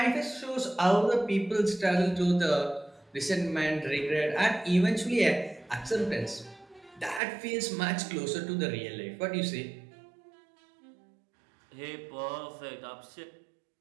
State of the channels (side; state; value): left; drops out; at 7.2 s